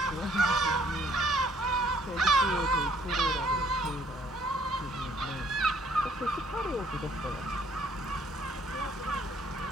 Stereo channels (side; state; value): both; normal; correlation 0.63